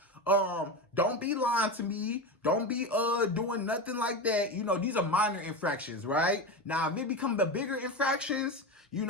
Don't be lying to me. Don't be doing nothing like that. These are minor infractions, right? Now, if it becomes the bigger infractions,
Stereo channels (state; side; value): normal; both; correlation 0.21